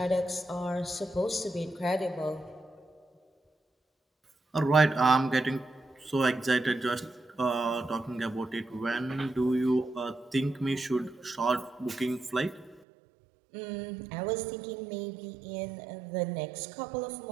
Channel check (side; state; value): left; drops out; at 12.8 s